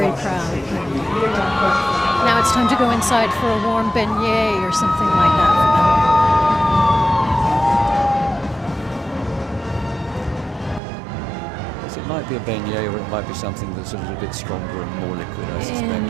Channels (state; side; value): drops out; left; at 10.8 s